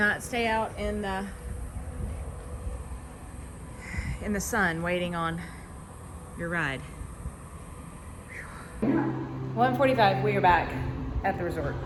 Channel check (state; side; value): identical; both; correlation 1.00